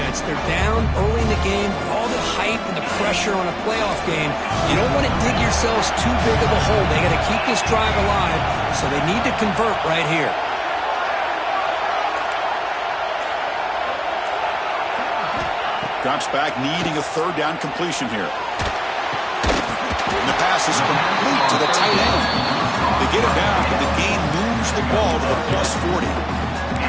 They're down early in the game. All the hype and the pressure on a playoff game. You don't want to dig yourselves too big of a hole. They got to keep this drive alive, so they need to convert right here. Drops back, needing a third down completion here. And the pass is complete to the tight end. They get it down, but the gain moves the ball to the +40.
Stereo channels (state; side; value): identical; both; correlation 1.00